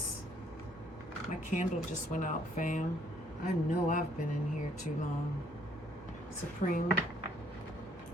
My candle just went out, fam. I know I've been in here too long. Supreme,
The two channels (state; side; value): normal; both; correlation 0.66